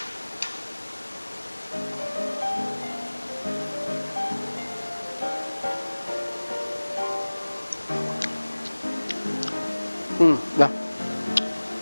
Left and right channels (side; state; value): both; inverted; correlation -1.00